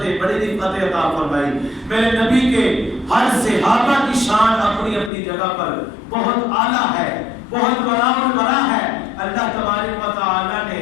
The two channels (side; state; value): right; drops out; at 5.1 s